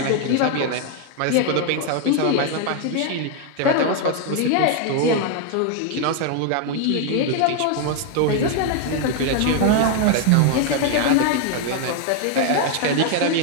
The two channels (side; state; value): both; different; correlation 0.00